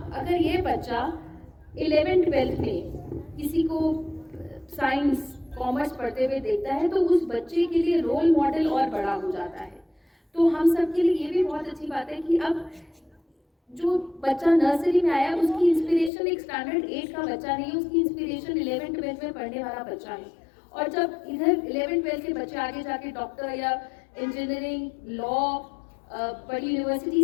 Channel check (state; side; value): drops out; right; at 16.1 s